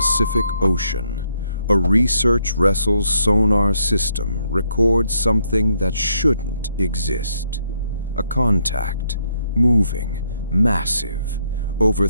Ocean, a research vessel's sonar system records something that shouldn't exist. A contact, moving, massive, over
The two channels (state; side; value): inverted; both; correlation -0.74